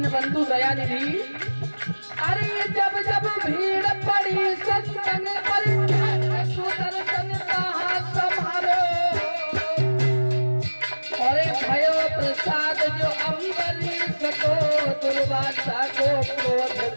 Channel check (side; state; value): both; inverted; correlation -1.00